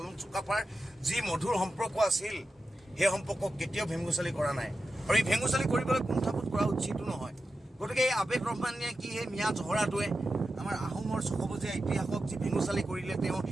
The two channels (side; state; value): both; normal; correlation 0.91